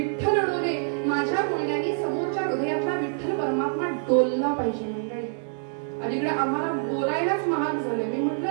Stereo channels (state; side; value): silent; left; 61 dB below the other